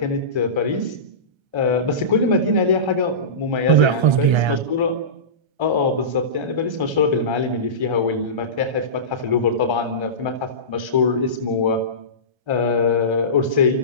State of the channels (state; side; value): late; left; 1.3 ms